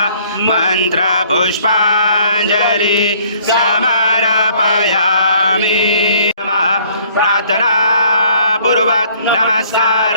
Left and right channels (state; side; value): inverted; both; correlation -0.59